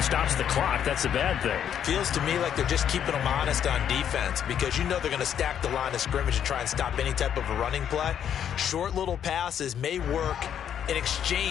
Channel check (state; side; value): quieter; right; 9.2 dB